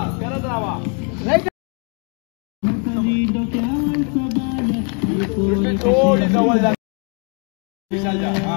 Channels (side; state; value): right; quieter; 38.7 dB